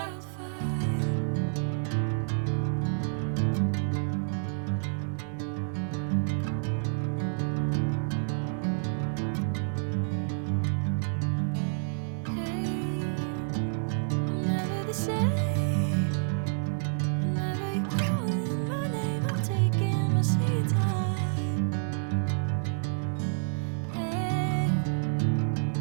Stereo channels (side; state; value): left; silent; digital silence